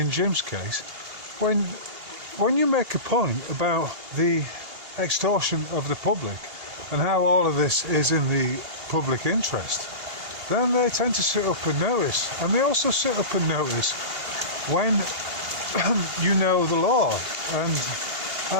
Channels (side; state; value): left; late; 2.8 ms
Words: Jim's case, when you make a point about the extortion of the public and how all of this is in the public interest, then they tend to sit up and notice. And they also sit up and notice when you know the law. And